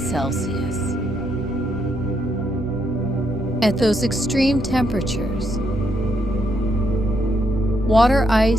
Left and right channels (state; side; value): normal; both; correlation 0.77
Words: Celsius. At those extreme temperatures, water